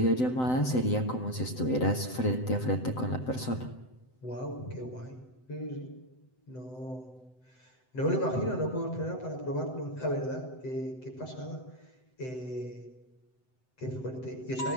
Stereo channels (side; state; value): right; late; 7.8 ms